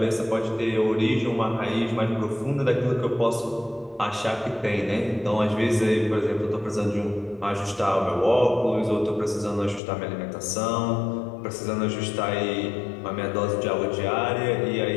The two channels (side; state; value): right; drops out; at 9.8 s